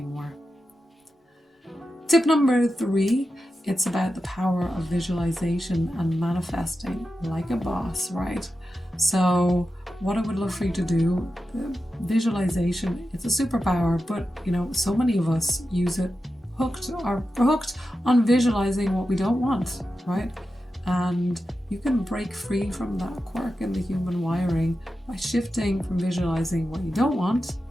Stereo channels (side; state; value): both; normal; correlation 0.91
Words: Tip number 3, it's about the power of visualization and manifesting like a boss, right? So what I would love for you to do, visualization, it's a superpower, but so many of us use it hooked on visualizing what we don't want, right? And you can break free from that quirk in the human wiring by shifting from visualizing what you don't want